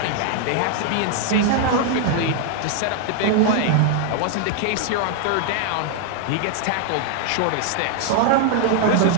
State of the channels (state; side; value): different; both; correlation 0.00